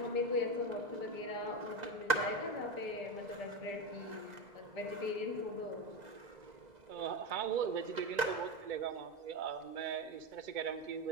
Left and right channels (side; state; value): left; late; 2.0 ms